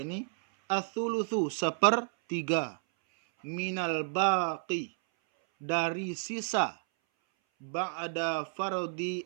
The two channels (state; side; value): silent; left; 57 dB below the other